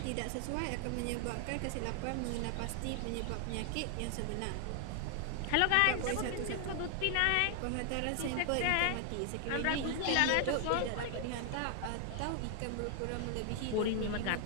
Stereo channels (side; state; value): both; different; correlation 0.00